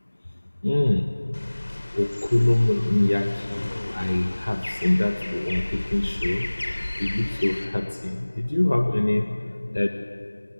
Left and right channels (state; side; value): inverted; both; correlation -1.00